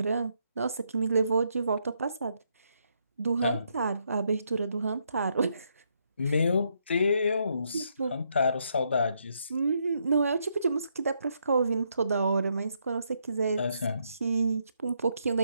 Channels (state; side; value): inverted; both; correlation -0.76